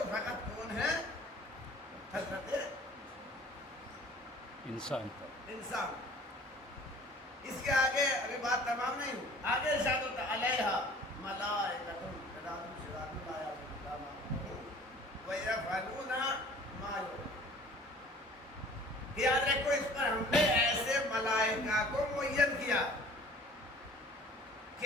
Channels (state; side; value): normal; both; correlation 0.49